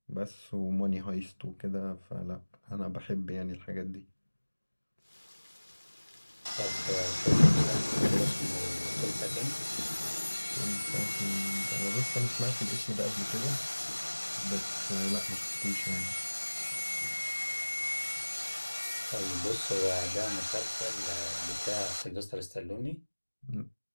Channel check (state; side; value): inverted; both; correlation -1.00